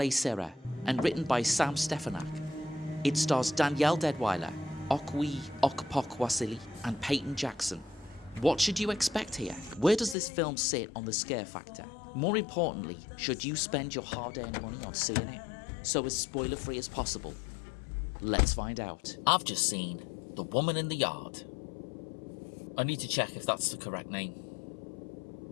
and written by Sam Stefanak, it stars Danielle Deadwyler, Okwe Okpokwasili, and Peyton Jackson. What should you expect here? Where does this film sit on the scare factor? More importantly, should you spend your hard-earned money on seeing it? So as spoiler-free as possible. Let's find out. I've just seen The Woman in the Yard. I need to check if that's the correct name.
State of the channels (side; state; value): right; drops out; at 10.2 s